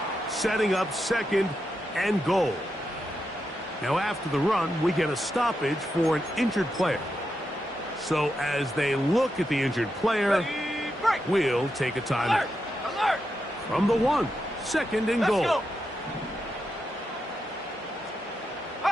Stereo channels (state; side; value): normal; both; correlation 0.86